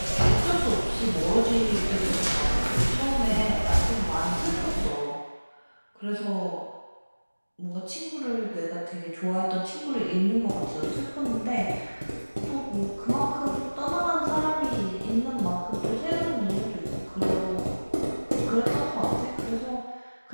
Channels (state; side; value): inverted; both; correlation -1.00